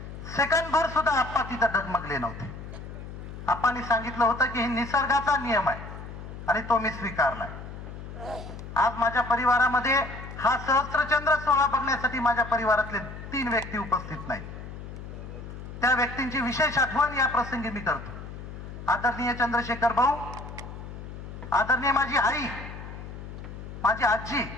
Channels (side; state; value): left; noise; hum, 11 dB below the sound